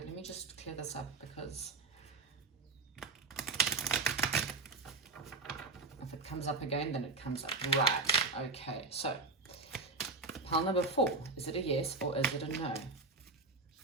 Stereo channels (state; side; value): quieter; left; 3.9 dB